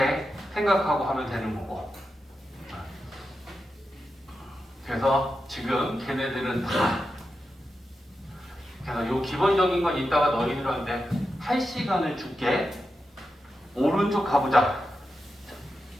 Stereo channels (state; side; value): normal; both; correlation 0.89